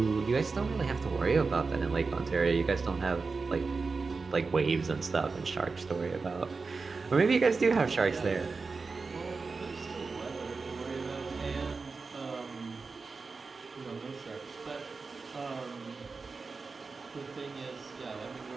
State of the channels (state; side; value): quieter; left; 4.4 dB